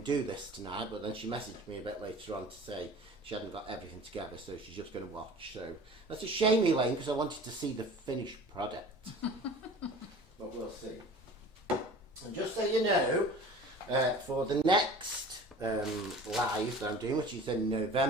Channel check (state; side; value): normal; both; correlation 0.42